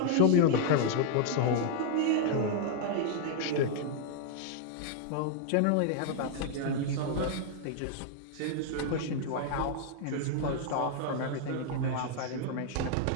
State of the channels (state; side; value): different; both; correlation 0.00